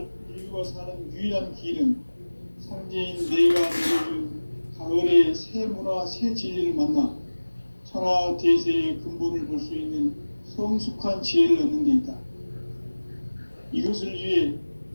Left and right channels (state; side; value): inverted; both; correlation -1.00